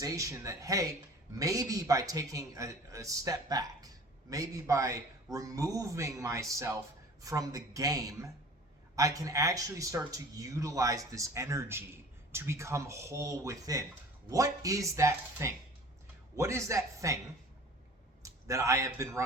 that, hey, maybe by taking a step back, maybe by removing myself from the game, I can actually start to utilize this energy to become whole within. What is that thing? What is that thing that I have been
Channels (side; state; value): both; normal; correlation 0.44